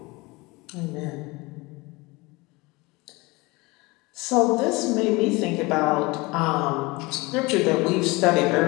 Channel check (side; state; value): right; quieter; 23.9 dB